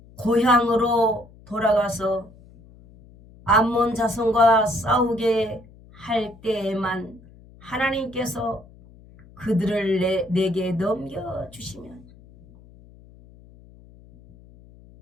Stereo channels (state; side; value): noise; left; hum, 24 dB below the sound